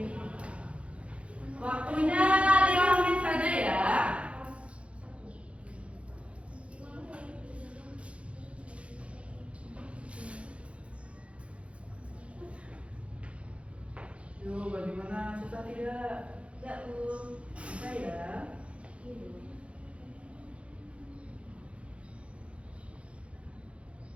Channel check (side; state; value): left; late; 0.061 ms